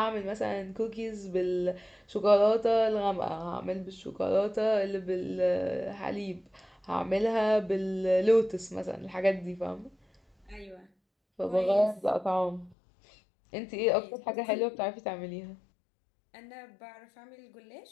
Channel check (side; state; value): right; drops out; at 12.8 s